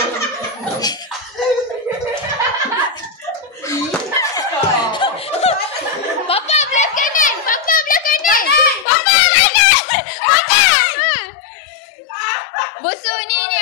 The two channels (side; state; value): right; drops out; at 8.8 s